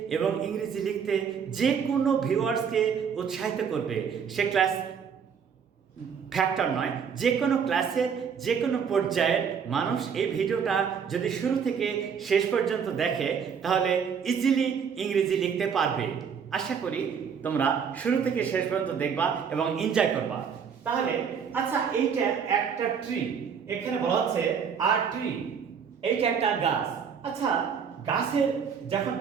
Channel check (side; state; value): left; quieter; 6.9 dB